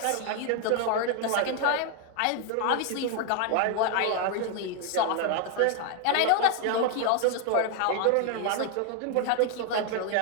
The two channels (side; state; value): both; different; correlation 0.00